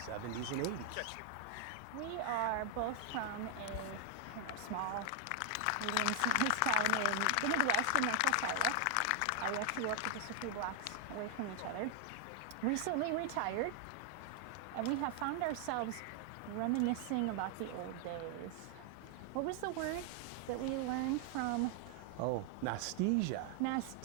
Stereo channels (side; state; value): both; different; correlation 0.00